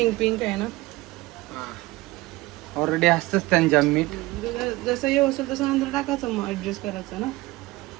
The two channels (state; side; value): quieter; left; 20.0 dB